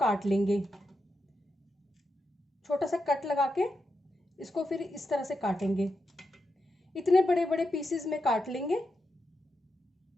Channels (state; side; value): normal; both; correlation 0.86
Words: लेंगे। छोटा सा कट लगा के इसको फिर इस तरह से काटेंगे। इतने बड़े बड़े पीसेस में काट लेंगे।